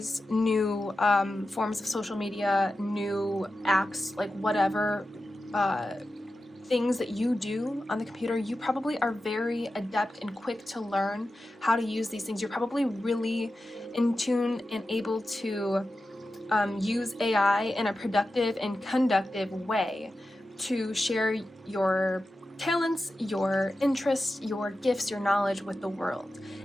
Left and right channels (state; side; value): normal; both; correlation 0.92